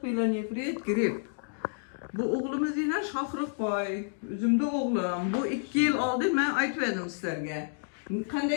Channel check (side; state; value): right; silent; digital silence